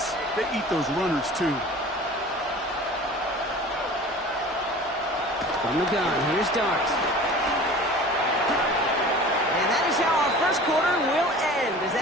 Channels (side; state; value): both; normal; correlation 0.41